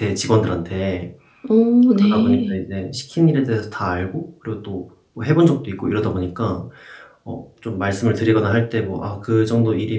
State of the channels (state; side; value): identical; both; correlation 1.00